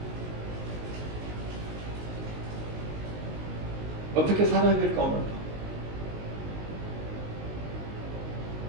어떻게 살아야 될까 오늘?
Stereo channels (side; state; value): left; late; 19 ms